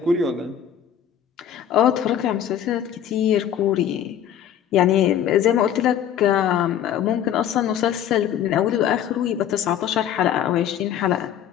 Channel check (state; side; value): quieter; right; 9.9 dB